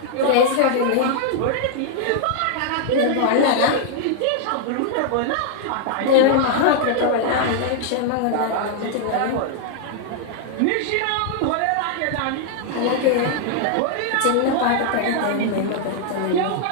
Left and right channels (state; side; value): different; both; correlation 0.00